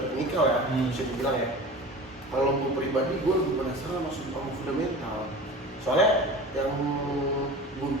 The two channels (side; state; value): both; normal; correlation 0.36